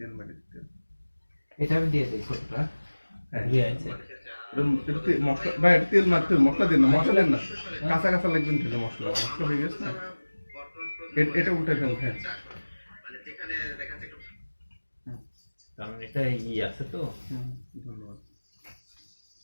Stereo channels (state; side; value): inverted; both; correlation -1.00